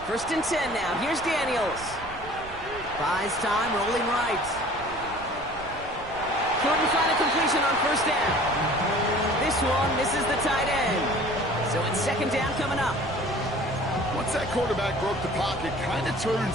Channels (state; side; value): noise; right; rumble, 16 dB below the sound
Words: 1st and 10 now. Here's Daniels. Buys time, rolling right. Couldn't find a completion on first down. This one misses the tight end. So it's 2nd down coming up. Once that quarterback broke the pocket, kind of